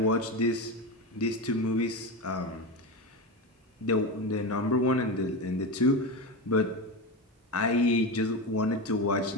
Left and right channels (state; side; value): normal; both; correlation 0.19